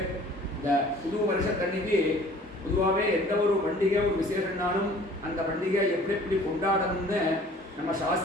இந்த புது வருஷத்தன்னைக்கு பொதுவாகவே எந்த ஒரு பண்டிகை ஒரு விசேஷம்னாலும் அந்த பண்டிகை எப்படி எப்படி கொண்டாடணும்னு நம்ம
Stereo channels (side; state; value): both; normal; correlation 0.51